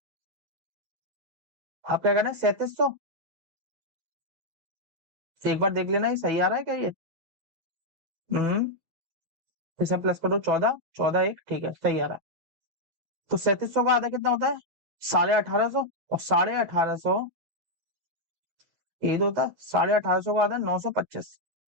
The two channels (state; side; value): late; left; 8.1 ms